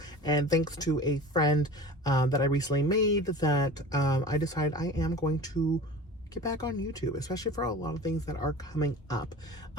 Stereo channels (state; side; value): normal; both; correlation 0.38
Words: And thanks to a friend that I recently made, that I decided I am going to get back on YouTube, especially for a lot of things that are coming up,